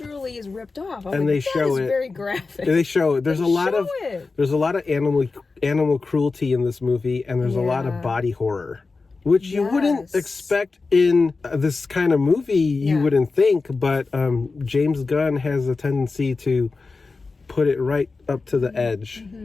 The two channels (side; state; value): right; quieter; 4.0 dB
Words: is ripped off. I'm and like, they show it. very graphic. They show it. There's a lot of animal cruelty in this movie, and there's a lot of body horror, which you wouldn't expect in this kind of movie. You wouldn't think, but James Gunn has a tendency to put it right up to the edge